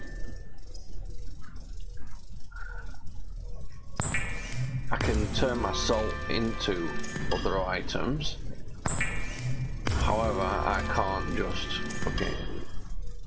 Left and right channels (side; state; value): both; identical; correlation 1.00